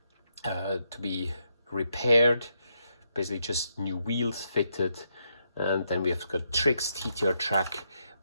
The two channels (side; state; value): both; inverted; correlation -0.79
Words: to be repaired. Basically, just new wheels fitted, and then we have got Trix TTR track,